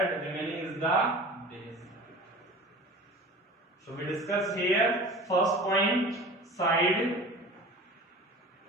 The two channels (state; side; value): normal; both; correlation 0.38